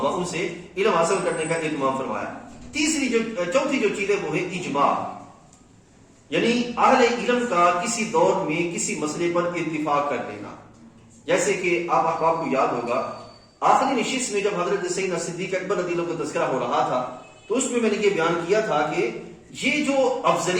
ان سے علم حاصل کرنے کا اہتمام فرمایا. چوتھی جو چیز ہے وہ ہے اجماع، یعنی اہل علم کا کسی دور میں کسی مسئلے پر اتفاق کر لینا. جیسے کہ آپ احباب کو یاد ہوگا آخری نشست میں جب حضرت سیدنا صدیق اکبر رضی اللہ عنہ کا تذکرہ ہو رہا تھا تو اس میں میں نے یہ بیان کیا تھا کہ یہ جو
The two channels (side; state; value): both; identical; correlation 1.00